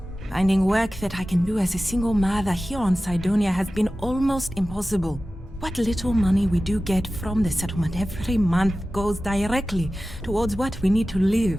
Finding work that I can do as a single mother here on Cydonia has been almost impossible. What little money we do get from the settlement every month goes directly towards what we need to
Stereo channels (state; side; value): normal; both; correlation 0.95